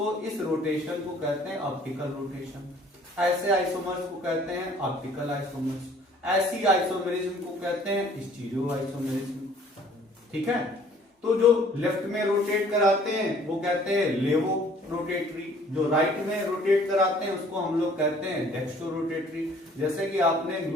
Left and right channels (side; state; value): both; normal; correlation 0.56